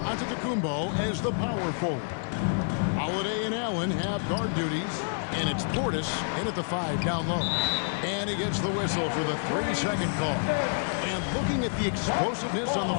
as the power forward. Holiday and Allen have guard duties, and it's Portis in at the 5 down low. And he gets the whistle for the 3-second call. And looking at the explosiveness on the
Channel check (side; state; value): right; silent; 59 dB below the other